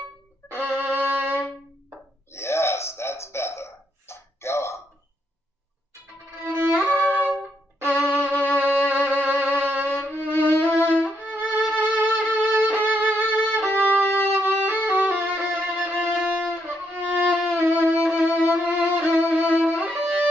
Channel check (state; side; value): normal; both; correlation 0.77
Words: Yes, that's better. Go on.